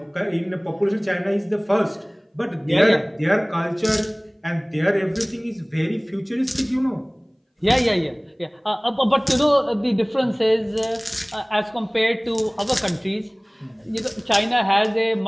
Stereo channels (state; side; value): identical; both; correlation 1.00